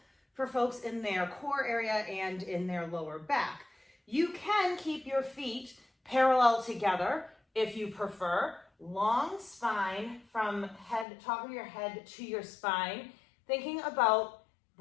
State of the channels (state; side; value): drops out; right; at 11.1 s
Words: for folks in their core area and in their lower back. You can keep your feet parallel together if you prefer. Long spine from top of your head to your spine, thinking about